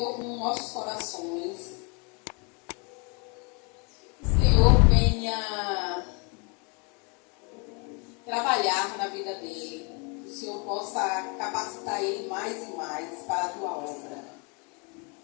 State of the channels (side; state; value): right; quieter; 33.4 dB